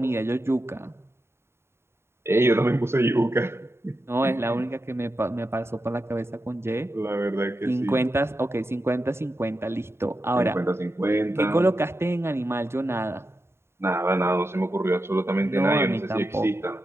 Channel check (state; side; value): late; left; 0.12 ms